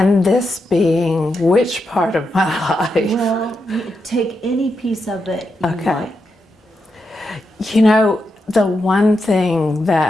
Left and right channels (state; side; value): normal; both; correlation 0.85